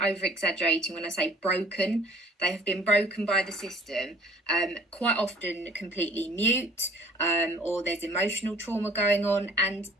exaggerating when I say broken. They have been broken by the system, quite often completely mute, or there's emotional trauma going on. And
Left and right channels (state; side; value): normal; both; correlation 0.54